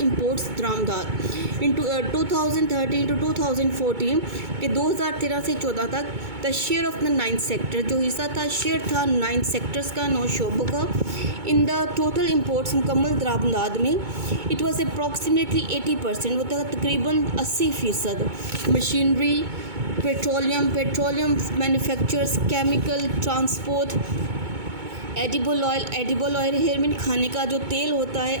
दरामदाद. इन 2013 टू 2014 के 2013 से 14 तक the share of the 9 sector, जो हिस्सा था शेयर था 9 सेक्टर्स का, 9 शोबों का इन द टोटल इम्पोर्ट्स मुकम्मल दरामदाद में. इट वॉज अप्रॉक्सीमेटली 80%, वो था तकरीबन 80%. Machinery, petroleum manufacturers, chemical, transport, edible oil here mean खाने का जो तेल होता है,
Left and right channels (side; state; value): left; late; 2.2 ms